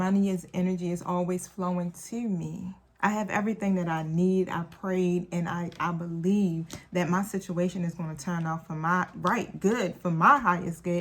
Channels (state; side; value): identical; both; correlation 1.00